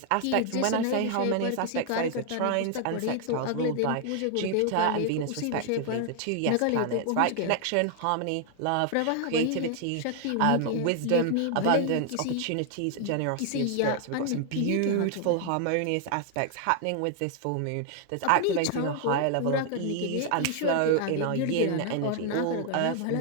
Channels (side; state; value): both; different; correlation 0.00